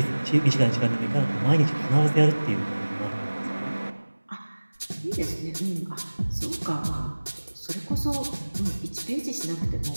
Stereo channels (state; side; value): inverted; both; correlation -1.00